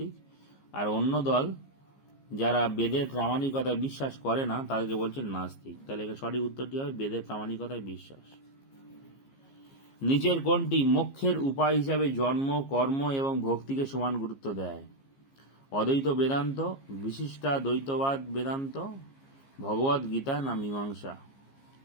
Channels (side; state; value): right; late; 15 ms